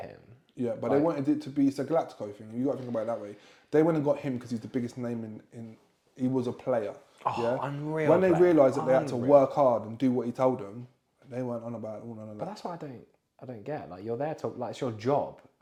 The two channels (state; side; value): identical; both; correlation 1.00